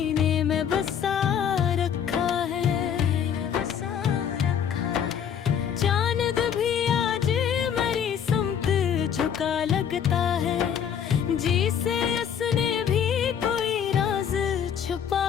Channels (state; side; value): quieter; right; 8.3 dB